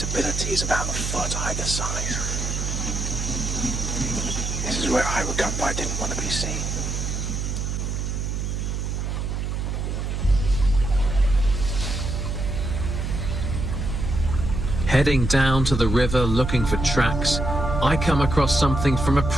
is about a foot either side. This is where I would come, but I didn't want to be seen. Heading down to the river looking for tracks, I come across something from a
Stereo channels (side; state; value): right; noise; hum, 2 dB below the sound